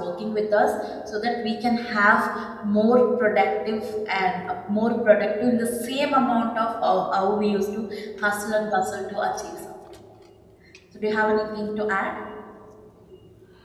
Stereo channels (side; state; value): both; identical; correlation 1.00